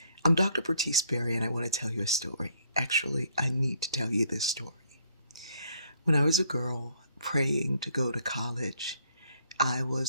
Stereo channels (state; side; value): inverted; both; correlation -0.65